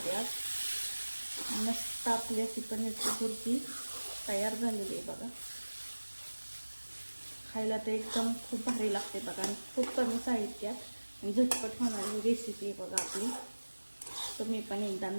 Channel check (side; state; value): both; inverted; correlation -1.00